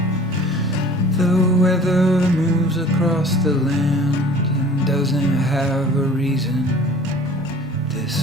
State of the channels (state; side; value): normal; both; correlation 0.47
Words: The weather moves across the land and doesn't have a reason.